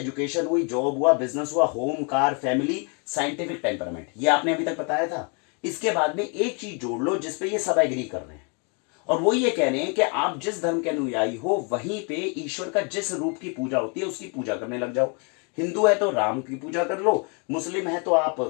हुई, जॉब हुआ, बिजनेस हुआ, home, car, family, scientific temperament, ये आपने अभी तक बताया था। इसके बाद में एक चीज जोड़ लो जिसपे ये सब एग्री कर रहे हैं, और वो ये कह रहे हैं कि आप जिस धर्म के अनुयायी हो वहीं पे ईश्वर का जिस रूप की पूजा होती है उसकी पूजा करने लग जाओ। हिंदू है तो राम की पूजा कर लो, मुस्लिम है तो आप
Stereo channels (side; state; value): right; quieter; 35.9 dB